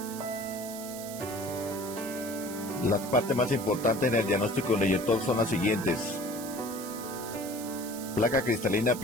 Las partes más importantes en el diagnóstico del inyector son las siguientes: placa cristalina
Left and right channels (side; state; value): right; noise; hiss, 12 dB below the sound